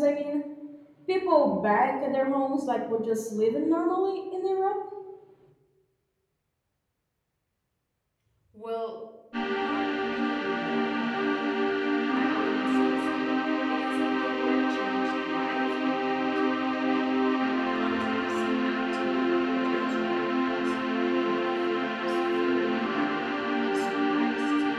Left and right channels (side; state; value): both; identical; correlation 1.00